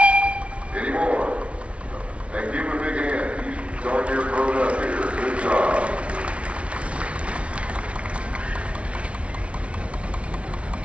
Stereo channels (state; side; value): late; left; 0.061 ms